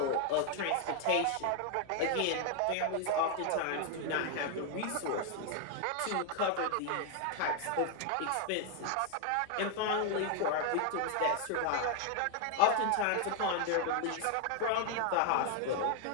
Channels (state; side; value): different; both; correlation 0.00